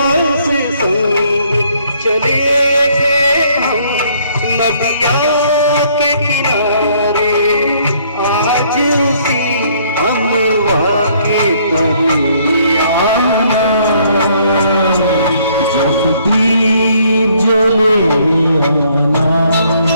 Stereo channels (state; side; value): inverted; both; correlation -0.64